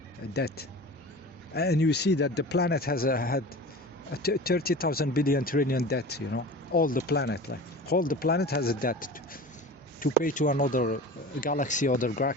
and you see that the planet has had 30,000 billion trillion debt, all the planet, like all the planet has a debt to pay to another galaxy or the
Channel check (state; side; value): normal; both; correlation 0.36